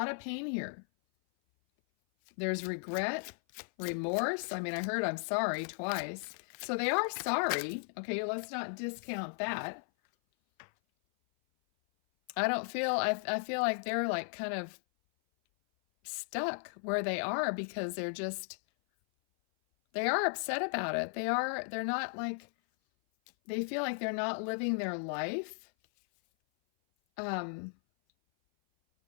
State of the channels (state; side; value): silent; right; 54 dB below the other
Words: of pain here. There's regret, remorse. I mean, I heard I'm sorry twice. So they are sorry. Okay, let's not discount that. I feel like they're like kind of stuck where they are because they are upset about it. They're not like, they feel like they're not living their life